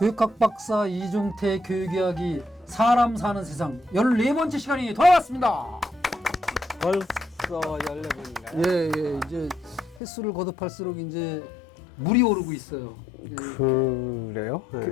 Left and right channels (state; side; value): drops out; right; at 10.0 s